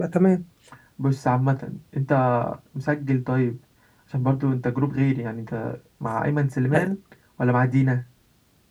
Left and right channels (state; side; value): identical; both; correlation 1.00